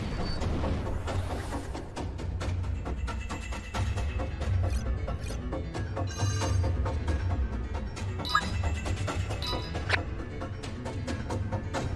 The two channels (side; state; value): both; identical; correlation 1.00